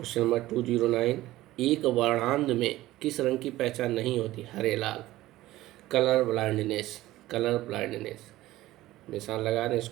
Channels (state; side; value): quieter; left; 16.4 dB